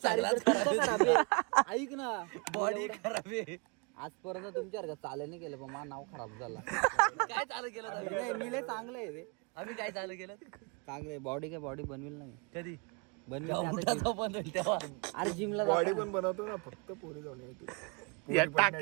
ऐक ना. बॉडी खराब आहे. आजपर्यंत तुमच्या चालू नाही केलं पण माझं नाव खराब झाला. काय चालू केलं. मी लय चांगलं आहे रे. आम्ही काय चालू केलं चांगलं. बॉडी बनवेल नाही कधी बनवेल तेव्हा. अरे जिमला बॉडी पण बनवतो ना फक्त पोरी जाऊन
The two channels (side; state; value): left; quieter; 32.8 dB